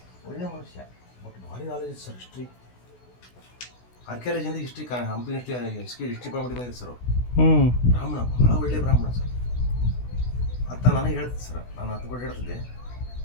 ಒಳ್ಳೆ ಮನುಷ್ಯ, ಬಟ್ ಭಾರಿ ನಾಲೆಜ್ ಸರ್. ಹಿಸ್ಟ್ರಿ, ಆರ್ಕಿಯಾಲಜಿಯಿಂದ ಹಿಸ್ಟ್ರಿ, ಹಂಪಿ ಹಿಸ್ಟ್ರಿ ಡಿಪಾರ್ಟ್ಮೆಂಟ್ ಬಂದಿದೆ ಸರ್ ಅವರು. ಬ್ರಾಹ್ಮಣ, ಭಾಳ ಒಳ್ಳೆ ಬ್ರಾಹ್ಮಣ ಸರ್. ಅಂತ ನನಗೆ ಹೇಳ್ತಿದ್ದೆ ಸರ್, ನಾನು ಹತ್ತು ಕೂಡ ಹೇಳ್ತಿದ್ದೆ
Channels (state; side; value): late; right; 16 ms